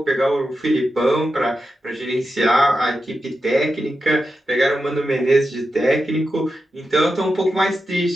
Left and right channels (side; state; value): both; normal; correlation 0.89